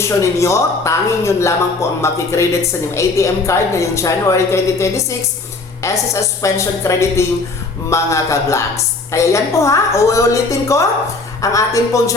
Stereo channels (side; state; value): right; quieter; 3.6 dB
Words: ninyo, tanging yun lamang po ang makikredit sa inyong ATM card ngayong January 2026, SSS pension crediting mga ka-vlogs. Kaya yan po uulitin ko ang ating pong